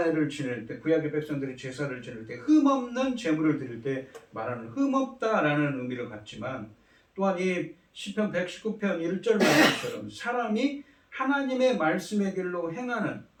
지낼 때, 구약의 백성들이 제사를 지낼 때 흠없는 제물을 드릴 때 말하는 흠없다라는 의미를 갖지만, 또한 이 시편 119편 1절 말씀처럼 사람이 하나님의 말씀의 길로 행하는,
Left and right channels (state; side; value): identical; both; correlation 1.00